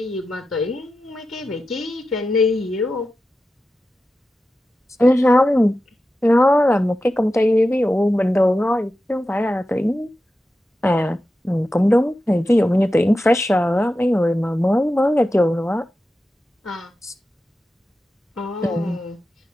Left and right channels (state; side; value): normal; both; correlation 0.92